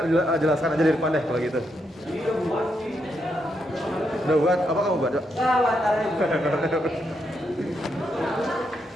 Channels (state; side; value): normal; both; correlation 0.80